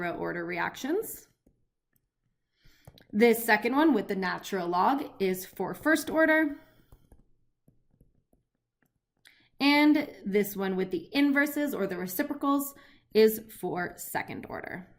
order reactions. This second one with the natural log is for first order. And this one with the inverses or the reciprocals is for second order.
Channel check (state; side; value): identical; both; correlation 1.00